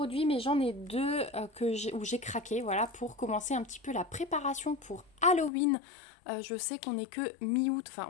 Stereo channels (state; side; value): drops out; right; at 5.5 s